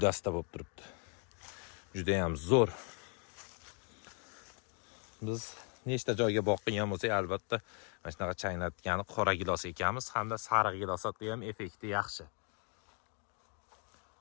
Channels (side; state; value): right; quieter; 38.3 dB